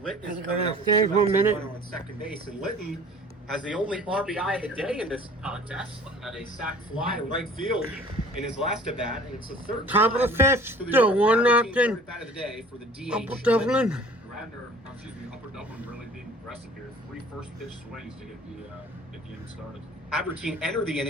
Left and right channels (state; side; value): normal; both; correlation 0.49